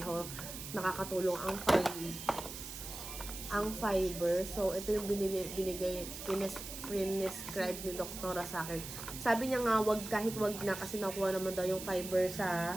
nakakatulong ang fiber. So, ito yung prescribe ni doktora sa akin. Sabi niya nga, kahit wag na kasi nakuha naman daw yung fiber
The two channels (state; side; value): noise; right; hiss, 9 dB below the sound